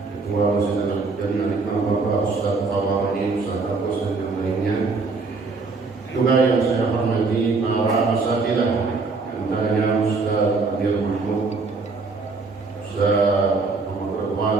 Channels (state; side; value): quieter; left; 4.0 dB